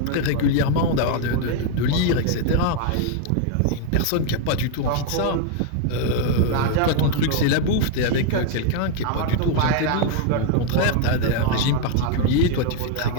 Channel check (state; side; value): different; both; correlation 0.00